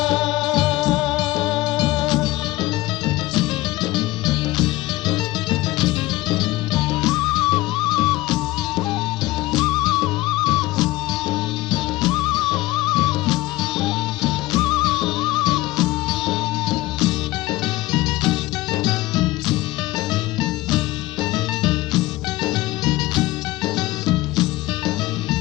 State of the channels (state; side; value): quieter; right; 18.5 dB